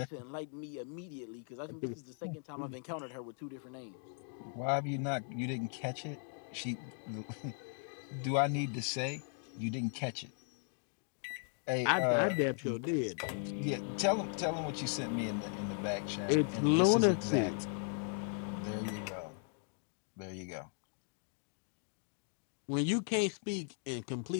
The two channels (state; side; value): silent; right; 53 dB below the other